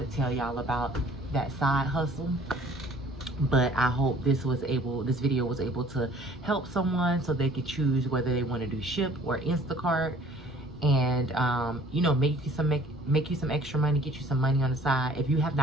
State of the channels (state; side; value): normal; both; correlation 0.54